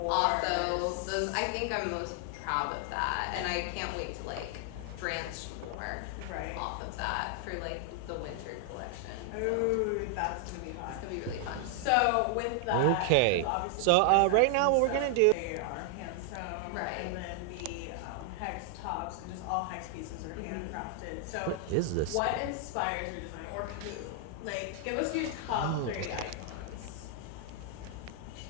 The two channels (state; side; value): different; both; correlation 0.00